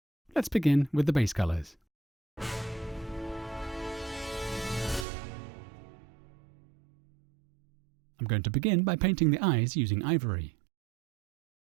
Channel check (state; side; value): drops out; left; at 5.1 s